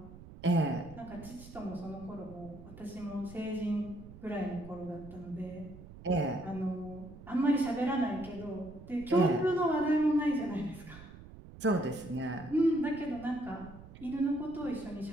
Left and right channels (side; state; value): right; noise; rumble, 16 dB below the sound